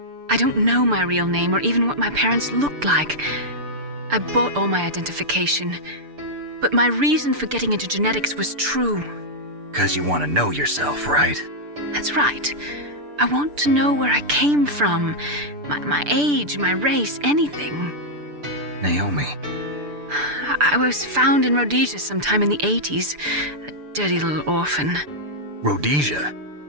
I don't know my real name or even what my parents looked like. I bought all my identification, but my reason for getting into genetics was true. 'Cause you want to know yourself, right? That's right. I want to know where I came from, my age, my race, anything. Naomi. I was found in Rhodesia sometime in the 80s, a dirty little orphan. Rhodesia?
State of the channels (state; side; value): late; left; 6.8 ms